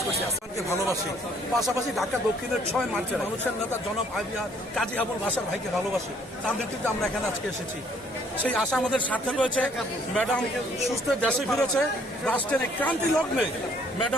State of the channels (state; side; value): normal; both; correlation 0.63